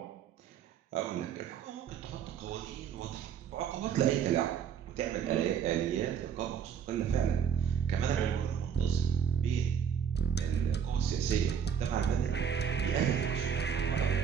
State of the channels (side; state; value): left; quieter; 7.8 dB